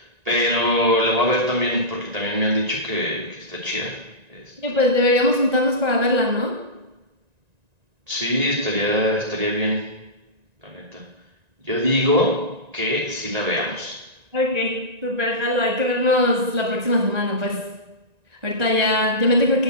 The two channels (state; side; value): late; left; 1.9 ms